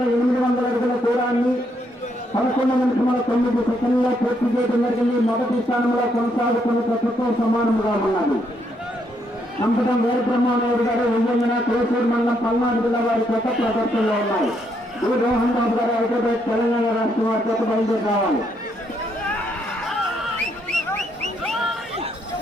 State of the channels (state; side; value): normal; both; correlation 0.75